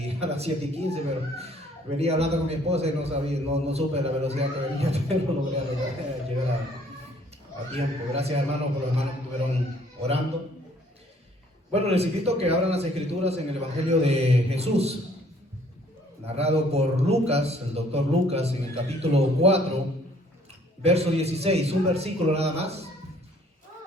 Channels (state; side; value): normal; both; correlation 0.60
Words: pero venía hablando con mi esposa y no sabía, no supe la velocidad que venía, pero logré llegar a tiempo. Gracias, hermanos, por los hermanos que estuvieron orando. Bueno, les invito a que abran las escrituras en el Evangelio de Jesús, narrado por Lucas, el doctor Lucas, en el capítulo 4, verso 16, un versículo nada más.